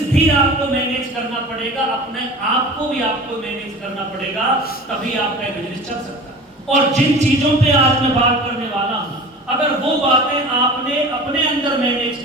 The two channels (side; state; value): both; normal; correlation 0.38